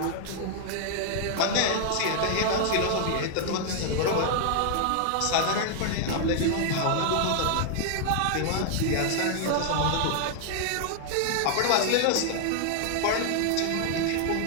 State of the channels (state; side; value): different; both; correlation 0.00